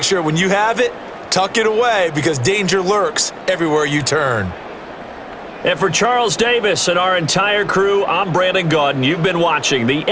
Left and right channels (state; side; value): identical; both; correlation 1.00